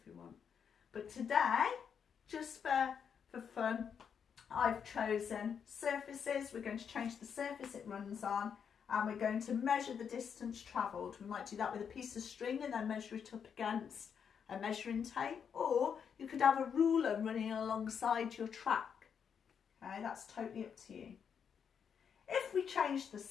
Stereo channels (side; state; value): right; quieter; 7.2 dB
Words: we want. But today, just for fun, I've chosen surfaces. We're going to change the surface it runs on and we're going to measure the distance travelled. We might do that with a piece of string and then measure it up against a measuring tape, or you could have a ruler running alongside your track. Okay, that's totally up to you. If we change the